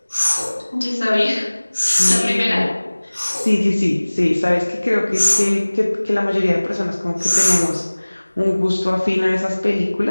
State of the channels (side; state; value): both; inverted; correlation -1.00